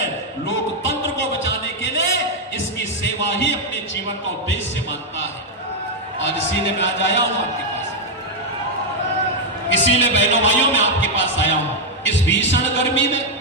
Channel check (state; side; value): normal; both; correlation 0.00